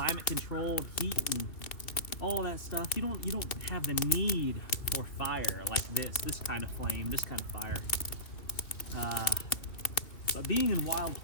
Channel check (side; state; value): right; late; 3.0 ms